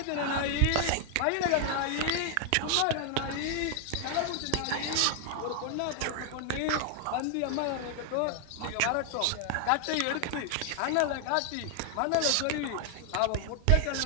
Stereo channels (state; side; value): different; both; correlation 0.00